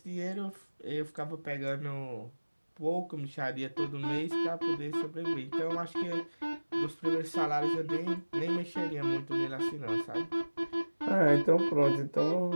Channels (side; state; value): both; inverted; correlation -1.00